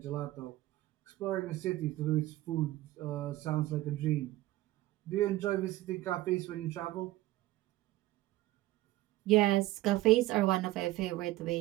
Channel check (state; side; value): quieter; left; 17.1 dB